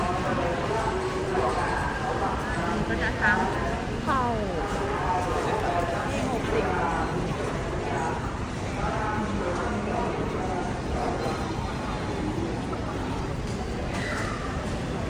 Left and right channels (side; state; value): both; identical; correlation 1.00